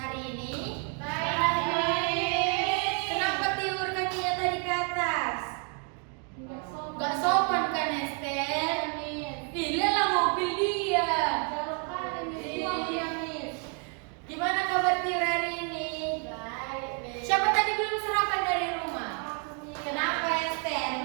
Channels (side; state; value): left; quieter; 38.7 dB